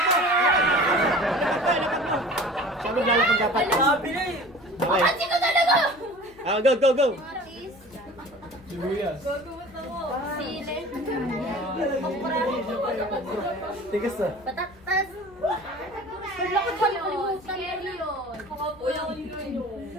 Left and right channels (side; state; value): left; noise; hum, 25 dB below the sound